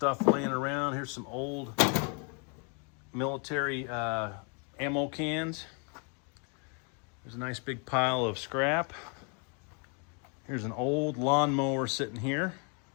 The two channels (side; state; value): right; quieter; 37.3 dB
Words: laying around. Here's some old military ammo cans. There's a nice big pile of scrap. Here's an old lawnmower sitting here.